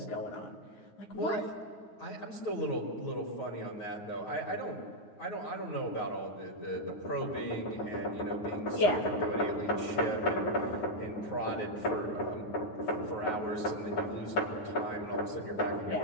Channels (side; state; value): right; late; 9.5 ms